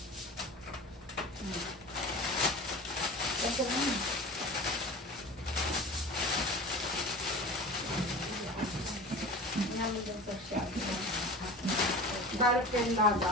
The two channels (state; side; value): normal; both; correlation 0.35